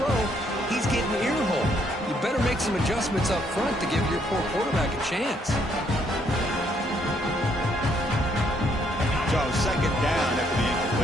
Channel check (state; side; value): normal; both; correlation 0.70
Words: he's getting ear-hole. You better make some adjustments up front to give your poor quarterback a chance. So second down after the